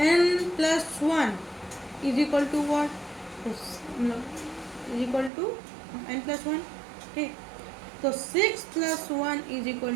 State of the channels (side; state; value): left; drops out; at 5.3 s